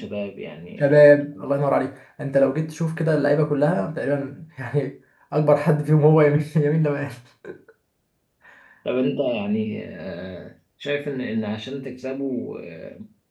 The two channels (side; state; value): both; identical; correlation 1.00